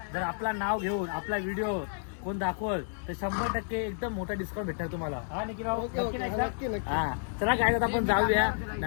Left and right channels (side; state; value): right; silent; digital silence